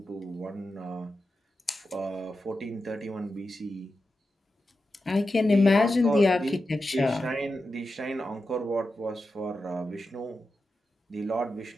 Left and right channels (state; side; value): normal; both; correlation 0.90